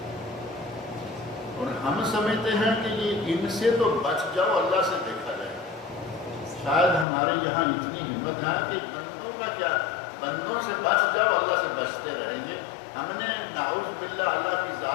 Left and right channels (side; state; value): right; drops out; at 7.1 s